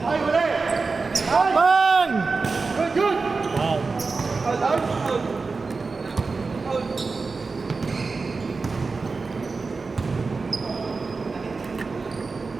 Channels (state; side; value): quieter; left; 4.2 dB